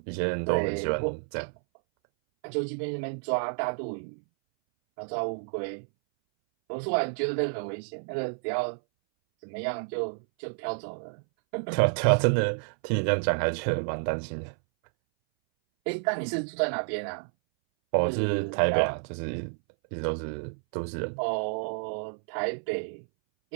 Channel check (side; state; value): left; silent; 58 dB below the other